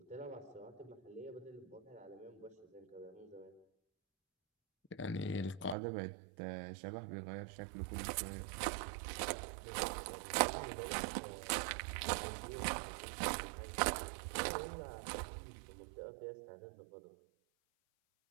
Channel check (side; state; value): left; drops out; at 5.8 s